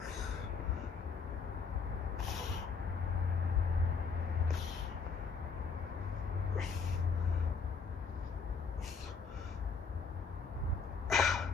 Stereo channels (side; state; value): right; quieter; 5.2 dB